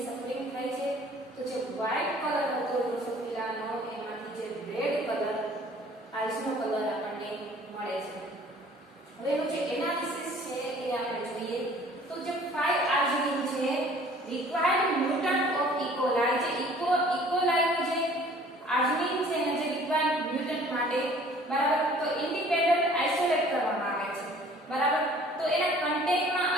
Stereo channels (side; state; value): both; normal; correlation 0.52